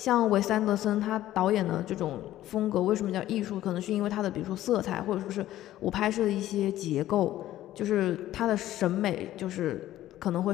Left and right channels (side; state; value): right; quieter; 13.9 dB